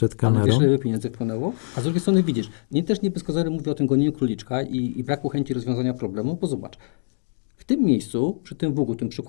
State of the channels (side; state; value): right; silent; digital silence